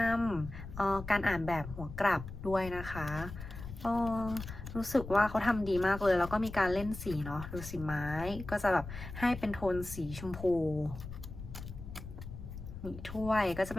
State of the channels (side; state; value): left; noise; rumble, 11 dB below the sound